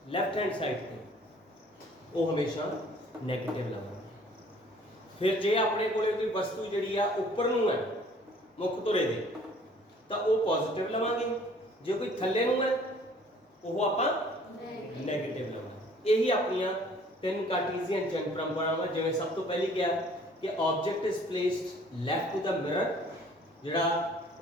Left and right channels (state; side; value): normal; both; correlation 0.55